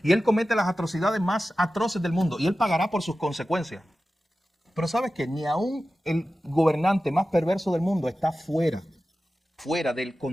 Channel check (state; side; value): normal; both; correlation 0.94